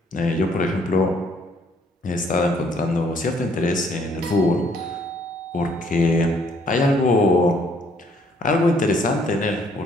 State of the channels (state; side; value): normal; both; correlation 0.65